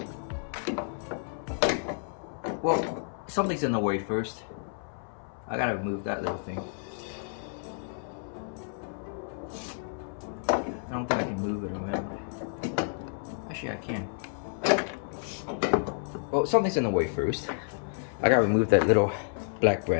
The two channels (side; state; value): right; silent; 58 dB below the other